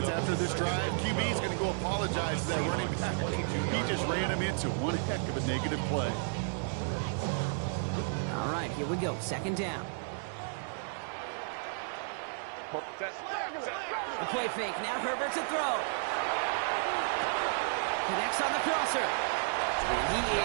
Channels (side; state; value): left; silent; 56 dB below the other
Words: after this drive, QB is going to go apologize to that running back. He just ran him into one heck of a negative play. All right, here we go. Second down. The play fake. Now Herbert to throw. Connects on the crosser. And he